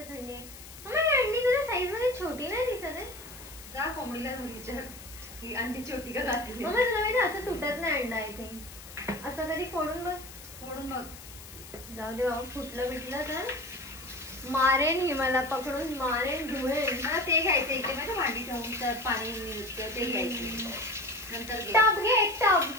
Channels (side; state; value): left; noise; hiss, 16 dB below the sound